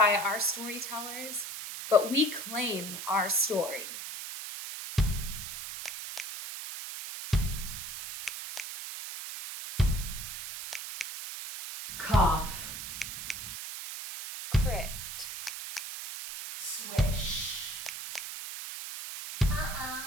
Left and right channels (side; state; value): right; noise; hiss, 8 dB below the sound